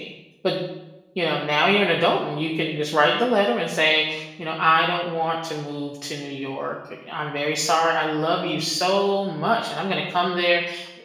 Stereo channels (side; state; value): both; identical; correlation 1.00